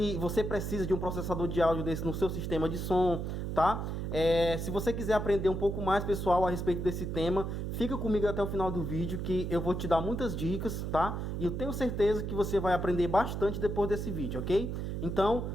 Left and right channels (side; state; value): right; noise; hum, 3 dB below the sound